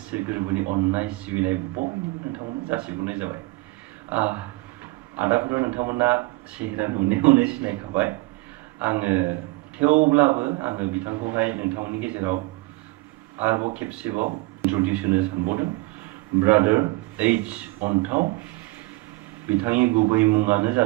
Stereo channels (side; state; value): left; quieter; 22.5 dB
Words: गोरबोनि अननाय सिबिनाय बयनोबो नोंथांमोन जासिहरनाय जाबाय। आदाफोर नोंथांमोना सेहेरा नुनायावनो सिनायखाबाय। आङो थेवब्लाबो आङो बिथांखौहाय नोंथांमोननि गेजेराव आरोबाव खेबसेबाव इन्ट्रडिउस होनो सानबावदों। ब्रादार एच अन्थाव, बिथांनि गुबै मुङानो